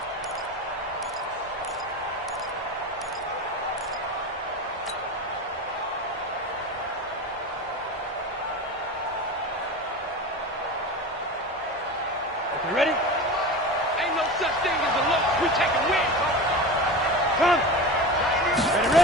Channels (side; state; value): both; normal; correlation 0.28